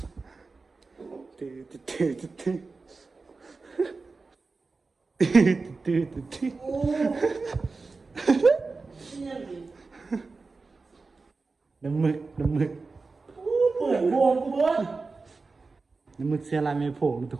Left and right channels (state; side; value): quieter; left; 4.0 dB